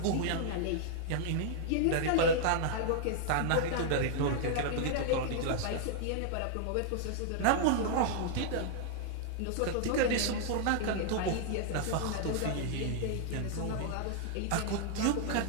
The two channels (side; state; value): both; different; correlation -0.01